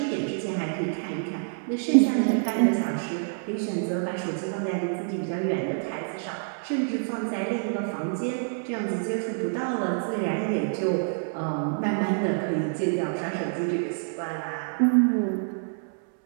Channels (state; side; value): silent; left; 60 dB below the other